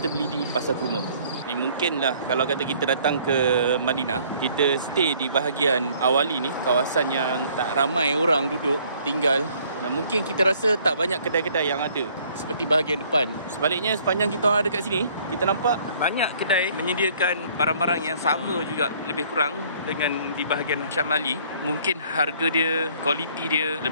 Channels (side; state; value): both; inverted; correlation -0.59